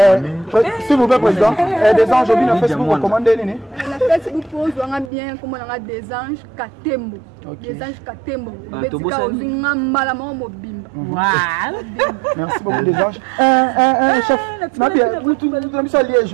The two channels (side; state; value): left; drops out; at 5.1 s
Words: S'il vous plaît, président, des anges, on Facebook, recommandez les. La Facebook pose bien comme on a des anges Katembo. Des anges Katembo. Merci beaucoup, des anges. Chef, vous avez ça